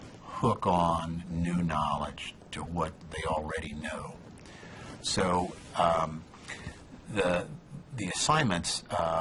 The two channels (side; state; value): both; identical; correlation 1.00